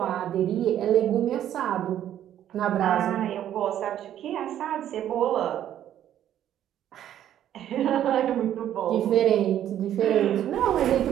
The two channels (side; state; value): left; quieter; 11.1 dB